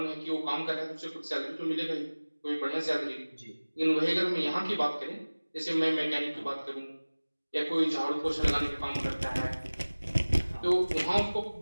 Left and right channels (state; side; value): inverted; both; correlation -1.00